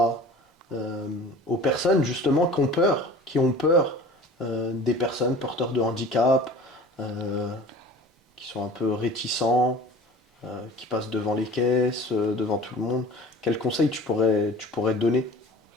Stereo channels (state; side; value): normal; both; correlation 0.43